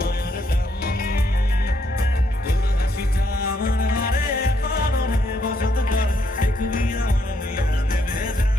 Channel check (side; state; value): both; normal; correlation 0.74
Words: টান। তোর হাসিটা আমার ঘরে এখনো বসত করে, দেখবি আমার নিয়ে দেবে যান।